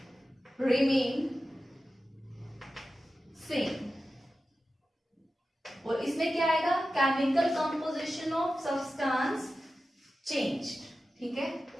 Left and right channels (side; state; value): both; normal; correlation 0.93